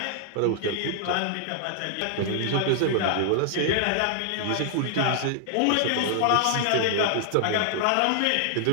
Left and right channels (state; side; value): different; both; correlation 0.00